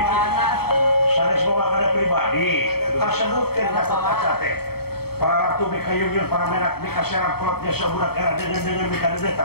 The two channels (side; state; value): right; late; 0.95 ms